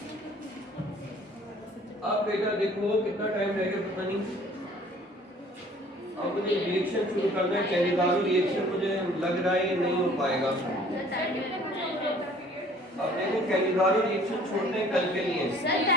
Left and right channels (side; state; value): both; normal; correlation 0.54